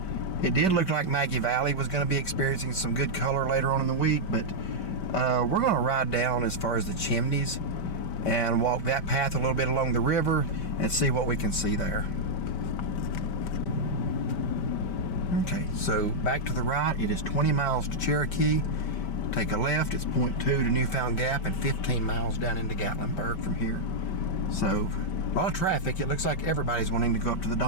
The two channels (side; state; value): right; late; 5.2 ms